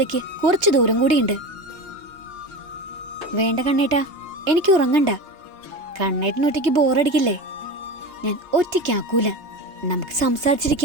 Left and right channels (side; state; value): left; late; 2.8 ms